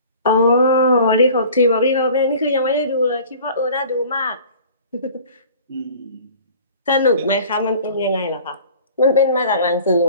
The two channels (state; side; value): inverted; both; correlation -0.47